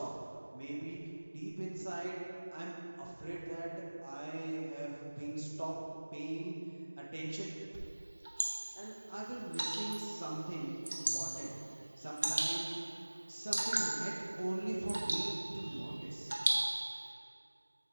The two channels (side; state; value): both; inverted; correlation -1.00